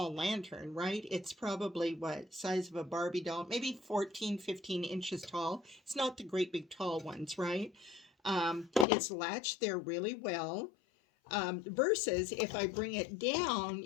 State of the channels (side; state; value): right; drops out; at 8.8 s